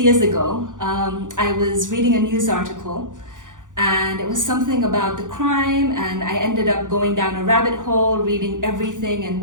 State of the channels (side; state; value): left; late; 0.87 ms